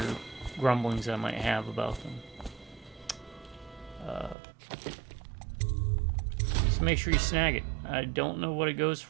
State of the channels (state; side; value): drops out; left; at 4.4 s